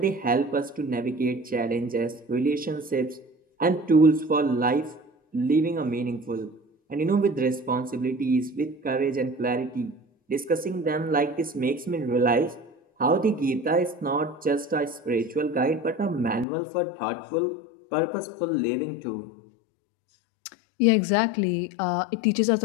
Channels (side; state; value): right; drops out; at 16.4 s